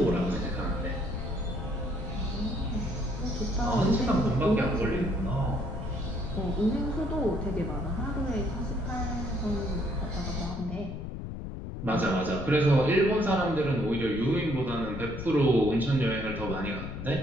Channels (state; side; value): noise; left; rumble, 7 dB below the sound